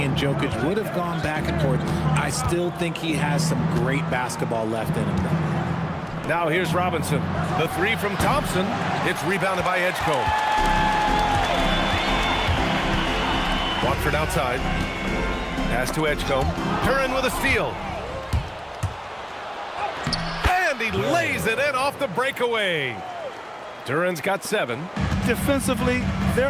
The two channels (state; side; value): identical; both; correlation 1.00